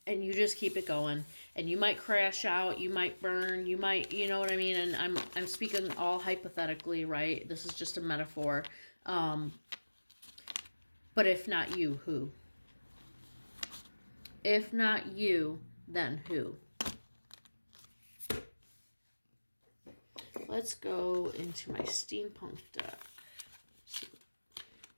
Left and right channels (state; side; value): inverted; both; correlation -1.00